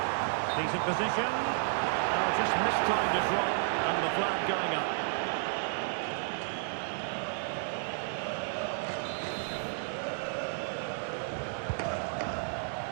Decent position. Oh, just mistimed his run, and the flag going up.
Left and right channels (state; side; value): silent; left; digital silence